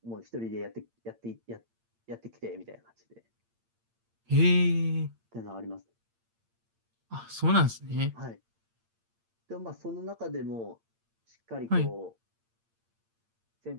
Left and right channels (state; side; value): late; left; 8.7 ms